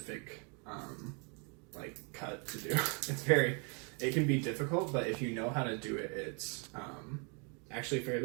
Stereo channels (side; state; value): left; quieter; 36.3 dB